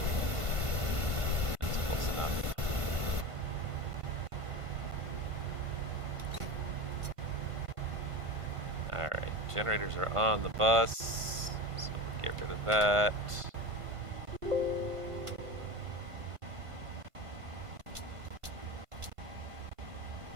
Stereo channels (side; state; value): left; late; 1.5 ms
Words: Alright, generators are on the bus, so we'll get rid of that.